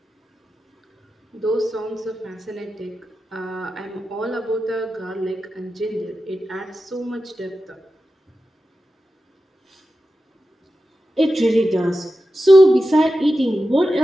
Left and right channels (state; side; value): normal; both; correlation 0.92